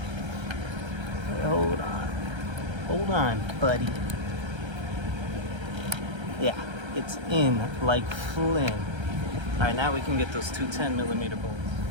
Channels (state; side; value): late; left; 1.3 ms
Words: Hey, hold on. Hold on, buddy. Yeah, it's in like Flynn. All right, now we can get those two 10mm